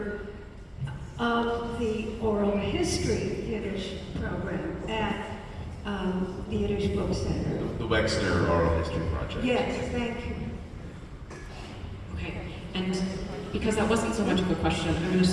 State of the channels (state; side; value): identical; both; correlation 1.00